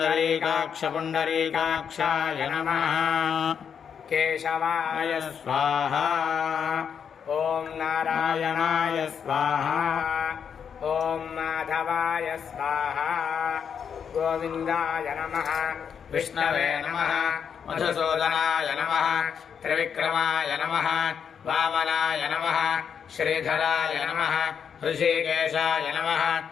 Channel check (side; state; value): right; quieter; 7.3 dB